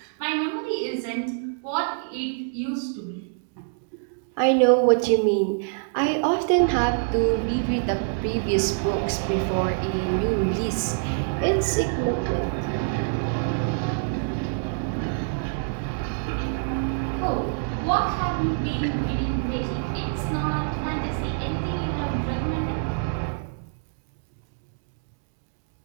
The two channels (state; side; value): silent; left; digital silence